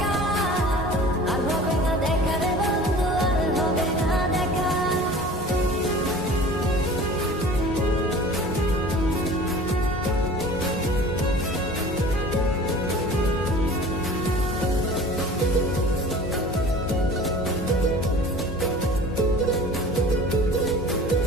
আর হবে না দেখা রে বন্ধু, আর হবে না দেখা।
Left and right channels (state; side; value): normal; both; correlation 0.43